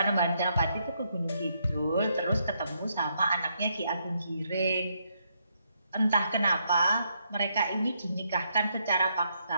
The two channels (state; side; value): inverted; both; correlation -0.76